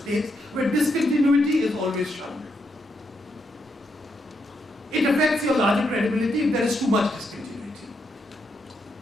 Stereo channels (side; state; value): both; normal; correlation 0.80